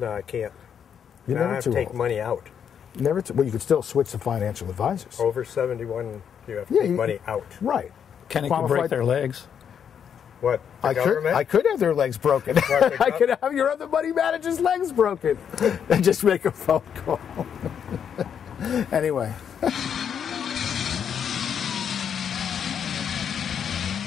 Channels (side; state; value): right; quieter; 8.0 dB